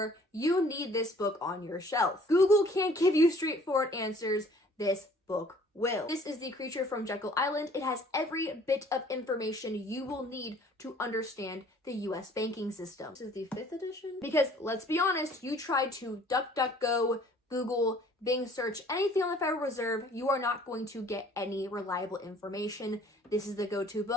you need this book on your shelf. Google can't give you straightforward answers. This book will. This is The Creature from Jekyll Island. It has every bit of information you will need to understand the US banking system. This is the 5th edition? Because let's be honest, you try to DuckDuckGo, Google, Bing search anything on the Federal Reserve, you are not going to get any reliable information. This is the go-to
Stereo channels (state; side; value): normal; both; correlation 0.55